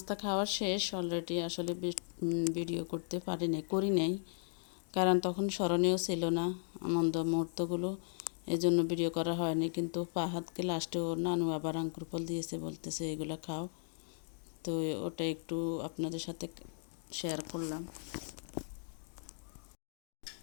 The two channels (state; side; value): silent; right; digital silence